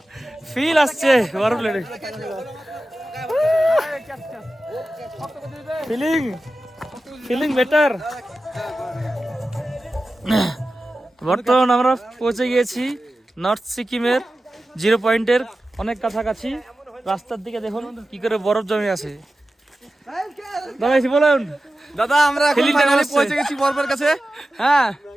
ফিল আসছে বরফ লেগে। Feeling feeling better. বর্তমান আমরা পৌঁছে গিয়েছি নর্থ সিকিমের 0 পয়েন্টের অনেক কাছাকাছি। রাস্তার দিকে দেখুন কি করে বরফ জমে আছে। দাদা বলুন। দাদা আমরা এখন ফাইনালি পৌঁছে গেছি বরফের কাছে। হ্যাঁ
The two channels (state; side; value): normal; both; correlation 0.94